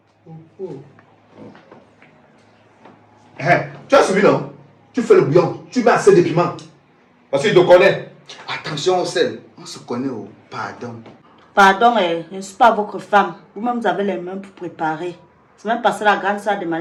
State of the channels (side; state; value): both; identical; correlation 1.00